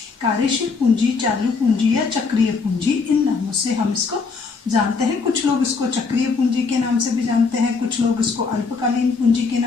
कार्यशील पूंजी, चालू पूंजी या चक्रीय पूंजी। इन नामों से हम इसको जानते हैं। कुछ लोग इसको चक्रीय पूंजी के नाम से भी जानते हैं, कुछ लोग इसको अल्पकालीन पूंजी के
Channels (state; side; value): quieter; right; 4.7 dB